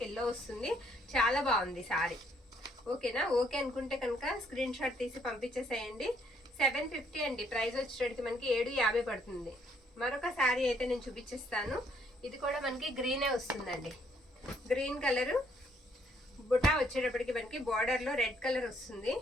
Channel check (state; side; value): normal; both; correlation 0.67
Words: ఎల్లో వస్తుంది. చాలా బాగుంది శారీ. ఓకేనా, ఓకే అనుకుంటే కనుక స్క్రీన్ షాట్ తీసి పంపించేసేయండి. 750 అండి. ప్రైస్ వచ్చేటప్పటికి మనకి 750 పడుతుంది. మరొక శారీ అయితే నేను చూపించేస్తాను. ఇది కూడా మనకి గ్రీనే వస్తుందండి. గ్రీన్ కలర్ బుటా వచ్చేటప్పటికి మనకి బార్డర్ లో రెడ్ కలర్ వస్తుంది.